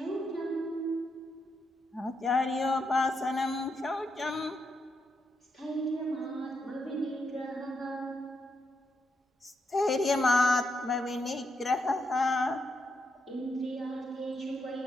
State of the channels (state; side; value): normal; both; correlation 0.81